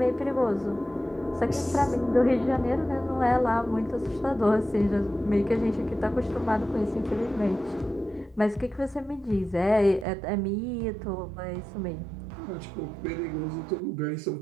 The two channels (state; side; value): drops out; left; at 10.1 s